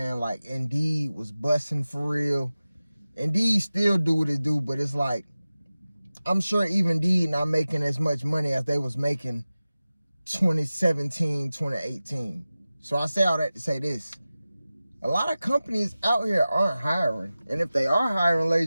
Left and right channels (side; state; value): both; inverted; correlation -0.96